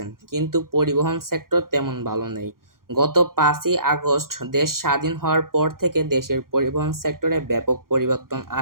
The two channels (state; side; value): late; left; 0.91 ms